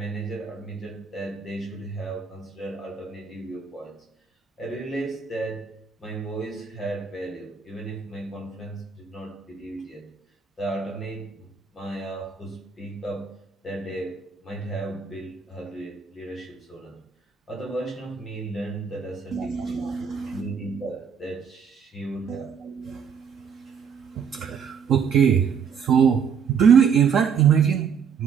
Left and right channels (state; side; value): quieter; left; 6.5 dB